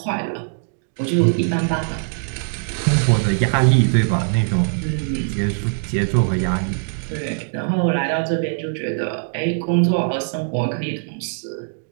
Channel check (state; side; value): silent; left; digital silence